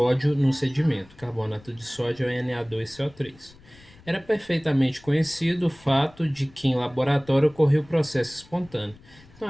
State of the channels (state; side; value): noise; left; rumble, 25 dB below the sound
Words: no sedimento. Carbonato de sódio é Na2CO3. Era perfeitamente conhecido o fato de que em laboratório ocorria o processo espontâneo.